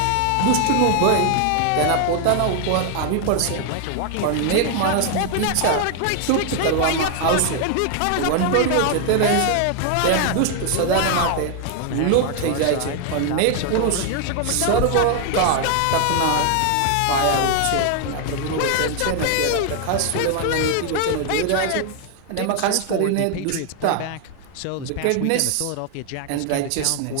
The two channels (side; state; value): both; different; correlation 0.00